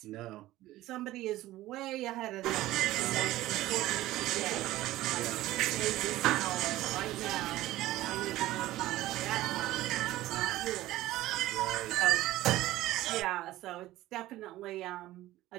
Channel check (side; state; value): left; quieter; 16.0 dB